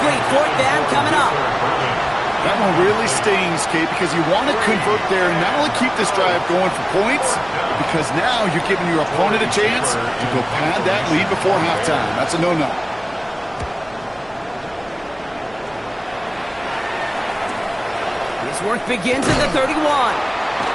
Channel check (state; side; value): noise; right; hum, 27 dB below the sound